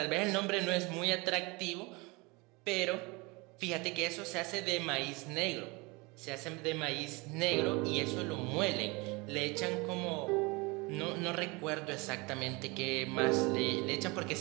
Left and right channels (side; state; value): left; quieter; 26.1 dB